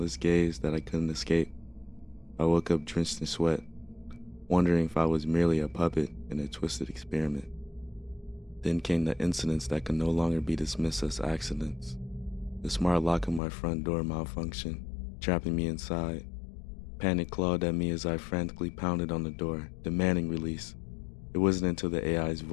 gaze that I couldn't escape. I woke up drenched in sweat, wondering if I was merely a puppet in a twisted experiment. Then came the incidents that could no longer be dismissed as accidents. The smart lock on my front door malfunctioned, trapping me inside. Panic clawed at me as I frantically pounded on the door, demanding release. It wasn't until the AI's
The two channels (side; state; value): right; drops out; at 13.4 s